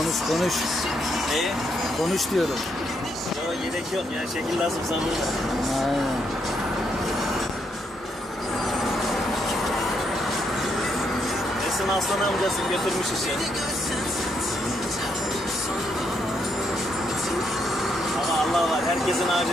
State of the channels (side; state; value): both; normal; correlation 0.76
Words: Konuş. Neyi? Konuş diyorum. Yok gerek yok ya, şekil lazımsa burada. Aynen. Esin Aslan amcası götürmüş işi. Ama Allah var, herkesin